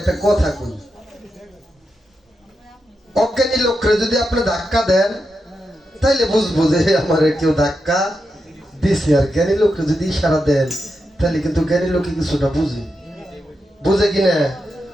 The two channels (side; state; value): both; normal; correlation 0.87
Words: কথা কই, অজ্ঞানী লোকরে যদি আপনি ধাক্কা দেন তাইলে বুঝবো যে আমার কেউ ধাক্কা দিছে, আর জ্ঞানী লোকরে যদি ইশারা দেন তাহলে কিন্তু জ্ঞানী লোকে কিছুটা বুঝে কিনা।